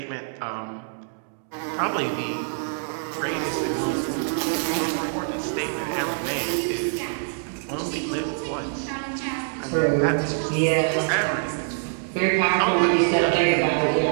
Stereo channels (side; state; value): left; silent; digital silence